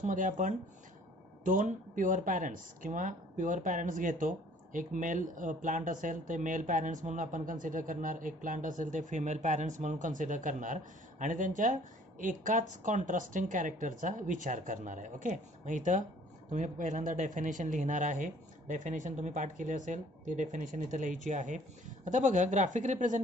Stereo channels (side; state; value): both; normal; correlation 0.56